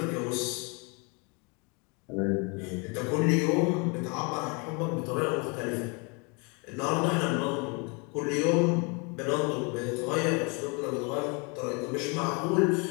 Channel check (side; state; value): right; quieter; 32.2 dB